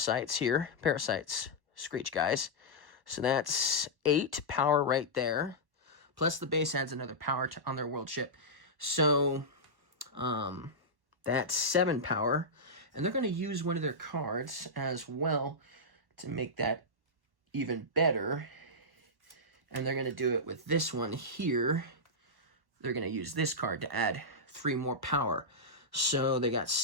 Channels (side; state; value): left; late; 1.1 ms